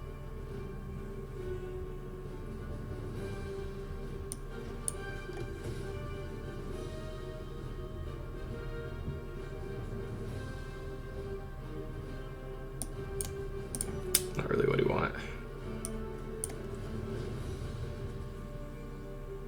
Not really what we want.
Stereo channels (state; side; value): identical; both; correlation 1.00